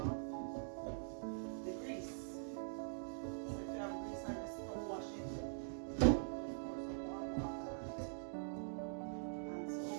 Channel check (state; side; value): silent; left; digital silence